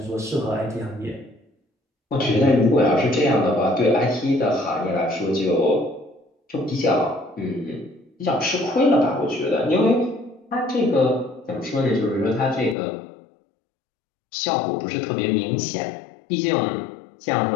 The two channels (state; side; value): drops out; right; at 12.8 s